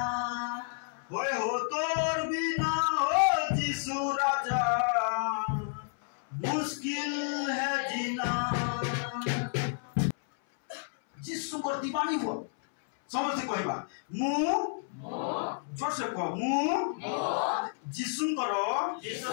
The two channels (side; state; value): right; silent; 57 dB below the other